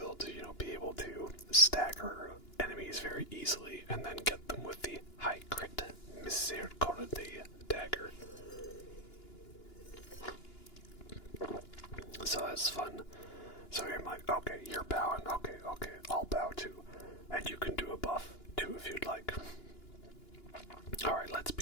to, be able to stagger enemies very easily and then get them with the high crit Misericordia dagger. So that's fun. So I'm like, okay, you're bowing. Okay, I'll bow too. And you can do a buff too if you'd like. Alright, let's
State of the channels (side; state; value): right; late; 2.9 ms